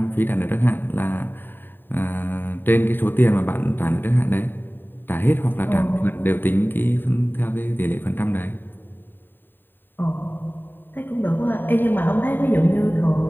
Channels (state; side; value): late; right; 0.094 ms